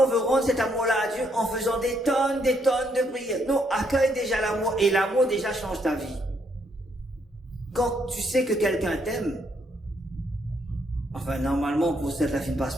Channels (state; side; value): normal; both; correlation 0.73